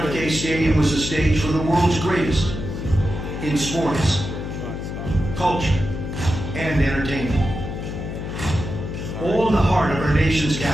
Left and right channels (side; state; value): left; noise; hum, 6 dB below the sound